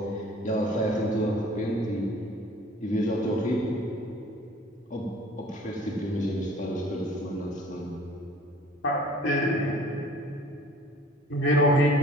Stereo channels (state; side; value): normal; both; correlation 0.50